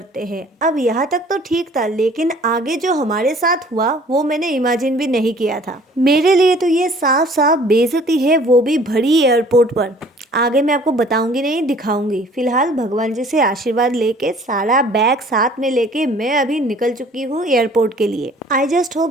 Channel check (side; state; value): both; normal; correlation 0.53